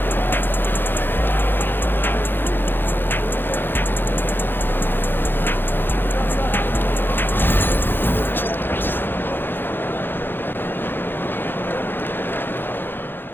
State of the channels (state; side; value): late; right; 0.099 ms